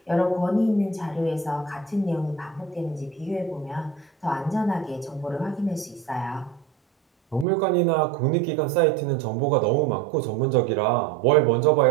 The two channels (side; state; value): left; drops out; at 7.5 s